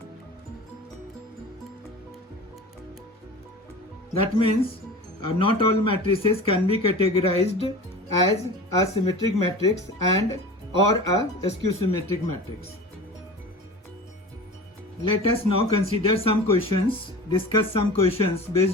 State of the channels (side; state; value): both; normal; correlation 0.36